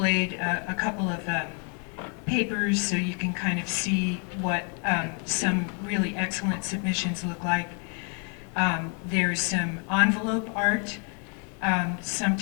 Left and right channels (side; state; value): right; quieter; 39.6 dB